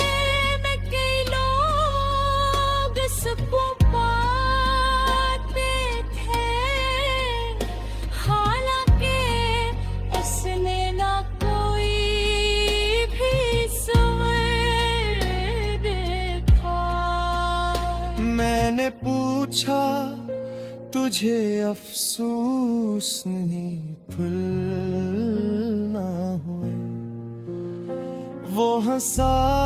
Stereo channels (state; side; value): identical; both; correlation 1.00